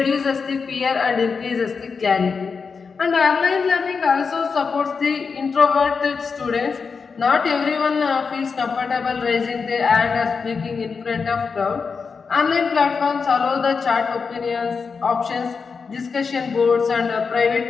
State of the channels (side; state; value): right; quieter; 5.3 dB